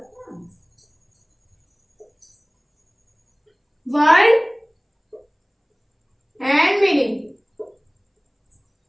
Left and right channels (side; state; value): both; identical; correlation 1.00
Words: वर्ड एंड मीनिंग,